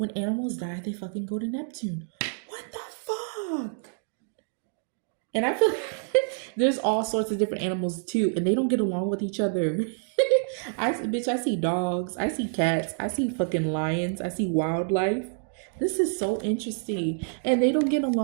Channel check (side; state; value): left; silent; 60 dB below the other